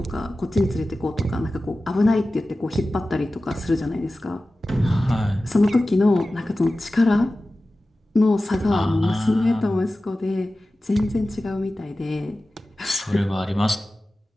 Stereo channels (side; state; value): both; normal; correlation 0.95